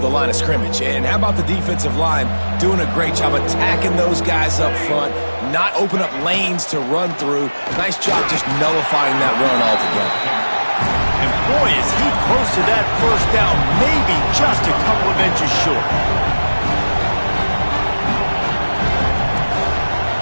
line of scrimmage. And how about the defensive line doing a great job attacking those guys up front, not open up lanes to run through. Nice job just nullifying that run altogether. Boy, is he close to that first down, maybe just a couple of inches short.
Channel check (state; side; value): inverted; both; correlation -1.00